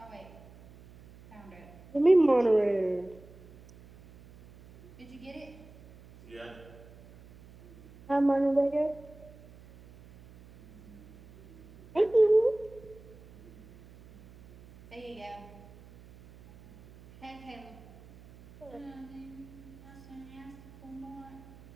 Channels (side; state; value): right; noise; hum, 22 dB below the sound